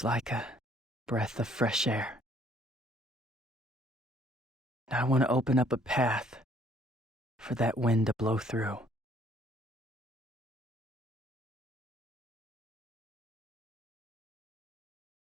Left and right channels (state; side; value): normal; both; correlation 0.62